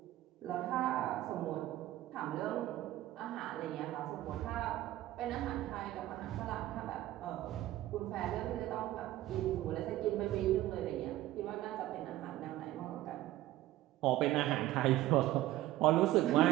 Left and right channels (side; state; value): left; quieter; 15.2 dB